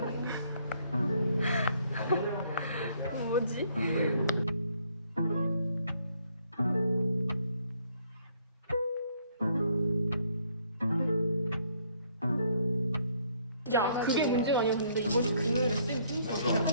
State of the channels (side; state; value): both; inverted; correlation -0.67